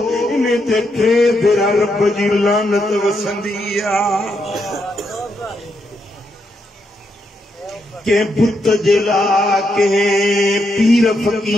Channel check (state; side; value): normal; both; correlation 0.80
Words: इन्हे ते टे भेरा रब जी लानत वसंदी आहे के बुत जे लाइ के पीर